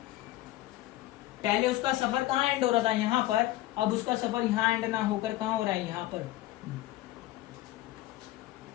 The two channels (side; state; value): right; quieter; 16.3 dB